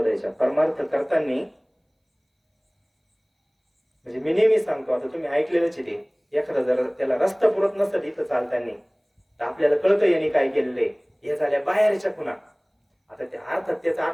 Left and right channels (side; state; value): both; identical; correlation 1.00